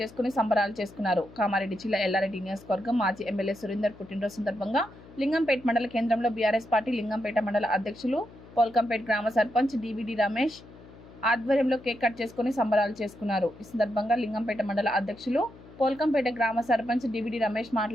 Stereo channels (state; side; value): noise; left; hum, 20 dB below the sound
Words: సంబరాలు చేసుకున్నారు. కామారెడ్డి జిల్లా ఎల్లారెడ్డి నియోజకవర్గం మాజీ ఎమ్మెల్యే సురేందర్ పుట్టినరోజు సందర్భంగా లింగంపేట్ మండల కేంద్రంలో బీఆర్ఎస్ పార్టీ లింగంపేట మండల అధ్యక్షులు పోల్కంపేట్ గ్రామ సర్పంచ్ డివిడి రమేష్ ఆధ్వర్యంలో కేక్ కట్ చేసుకుని సంబరాలు చేసుకున్నారు. ఈ సందర్భంగా లింగంపేట మండల అధ్యక్షులు పోల్కంపేట గ్రామ సర్పంచ్ డివిడి రమేష్